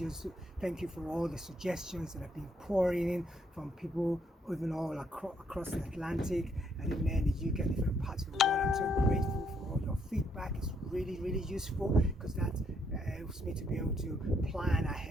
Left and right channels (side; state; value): both; normal; correlation 0.72